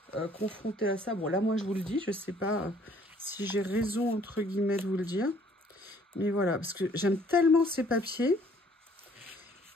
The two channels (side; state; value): both; normal; correlation 0.59